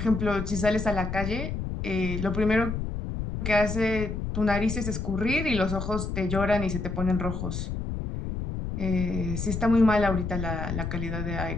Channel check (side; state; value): left; noise; rumble, 4 dB below the sound